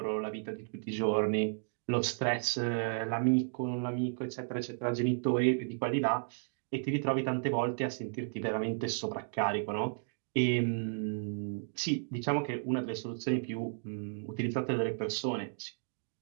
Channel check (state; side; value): silent; left; digital silence